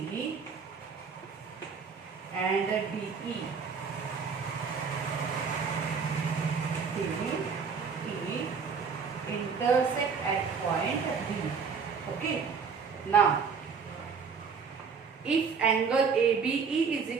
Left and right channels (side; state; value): left; quieter; 5.8 dB